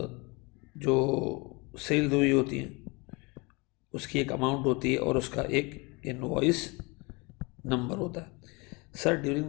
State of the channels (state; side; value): quieter; right; 27.3 dB